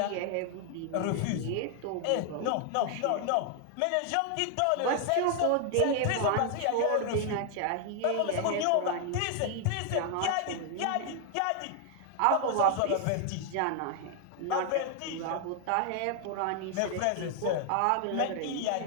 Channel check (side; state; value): both; different; correlation 0.00